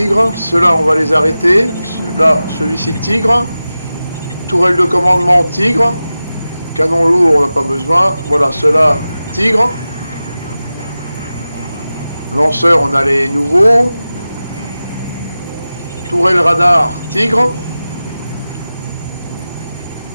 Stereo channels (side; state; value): both; inverted; correlation -0.95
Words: ceux-là on va les arrêter. Là, celui-ci Tigre. Tourelle de commandement Tigre. Canon lourd, on n'a pas besoin. Voilà, ceux-là Tigre. Lanceur, on a les nouveaux. Tourelle radar Tigre.